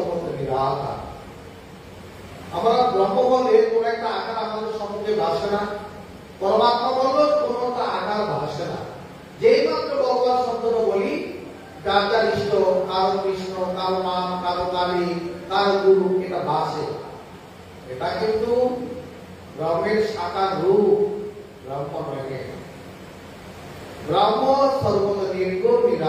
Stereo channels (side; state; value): both; identical; correlation 1.00